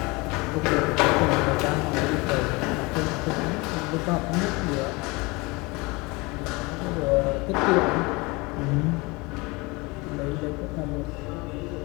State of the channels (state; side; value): quieter; right; 25.4 dB